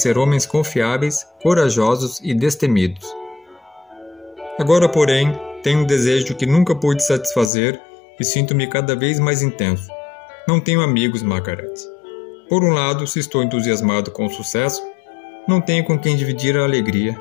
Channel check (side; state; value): right; drops out; at 7.5 s